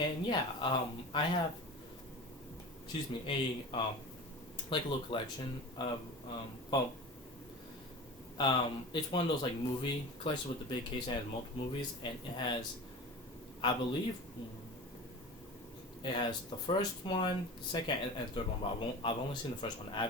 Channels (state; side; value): normal; both; correlation 0.33